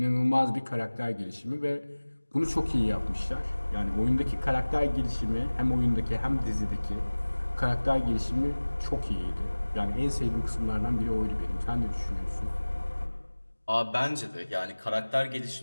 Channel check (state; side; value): inverted; both; correlation -1.00